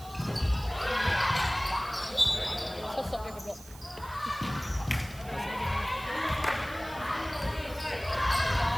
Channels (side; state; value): right; noise; hiss, 19 dB below the sound